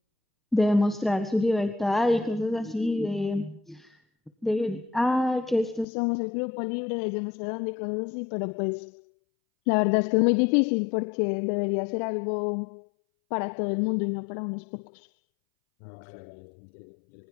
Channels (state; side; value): drops out; right; at 5.9 s